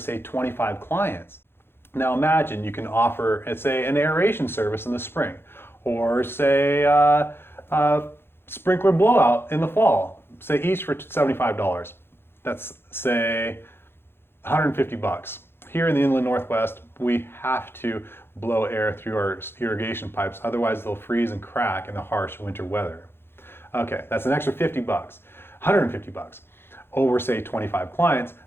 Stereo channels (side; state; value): right; late; 0.11 ms